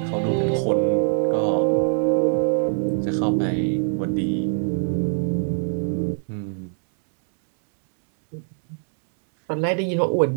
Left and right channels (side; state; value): left; silent; 64 dB below the other